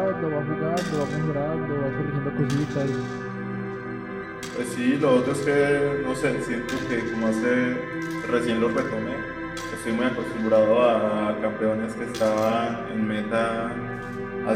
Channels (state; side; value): identical; both; correlation 1.00